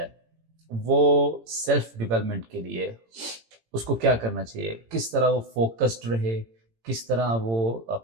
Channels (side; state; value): left; late; 18 ms